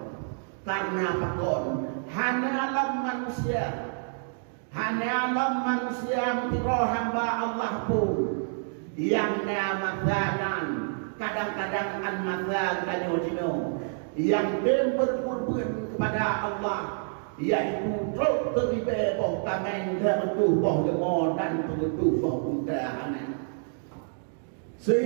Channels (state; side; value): silent; left; digital silence